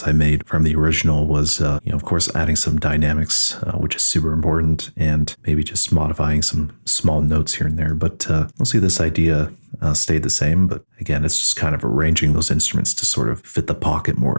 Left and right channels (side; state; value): both; inverted; correlation -1.00